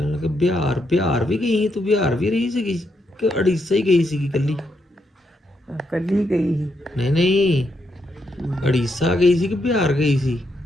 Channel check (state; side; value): normal; both; correlation 0.79